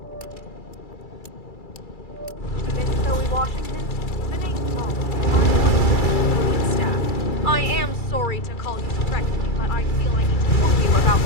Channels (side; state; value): right; late; 2.3 ms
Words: Miss Zoe Washington, my name's Tom. Staff. I am sorry to call you directly, but I feel I need to warn you about